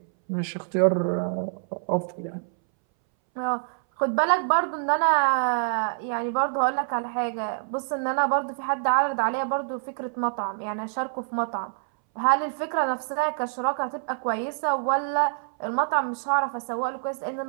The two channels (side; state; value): left; silent; 61 dB below the other